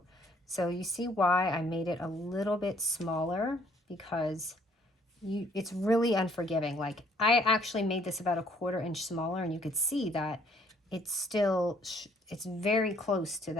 So you see why I made it a little bit smaller, because it's really unforgiving. Like, I actually made this about 1/4 inch smaller, and you could see that it's still, it's very close to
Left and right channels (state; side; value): normal; both; correlation 0.63